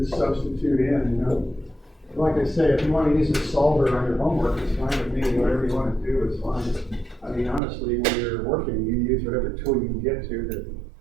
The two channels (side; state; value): left; drops out; at 7.6 s